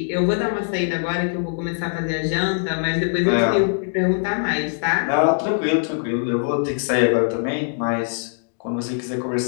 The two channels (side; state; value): right; silent; digital silence